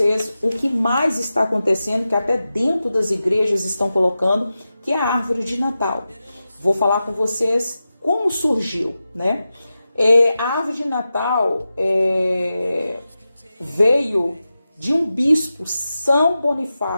o que mais está acontecendo, que até dentro das igrejas estão colocando, que é a árvore de Natal. Vou falar com vocês como surgiu, né? A árvore de Natal veio de um bispo, São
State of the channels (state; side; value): inverted; both; correlation -0.93